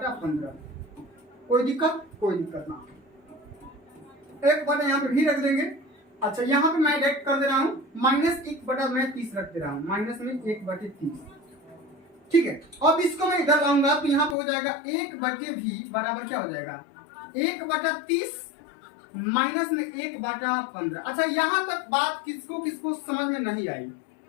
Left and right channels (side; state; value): right; drops out; at 14.4 s